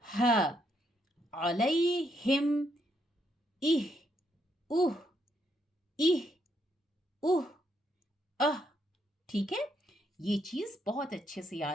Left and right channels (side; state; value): both; normal; correlation 0.76